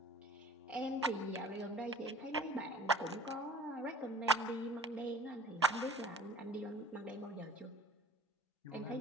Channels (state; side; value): normal; both; correlation 0.46